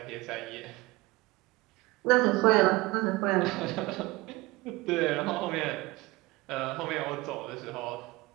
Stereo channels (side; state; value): left; quieter; 21.6 dB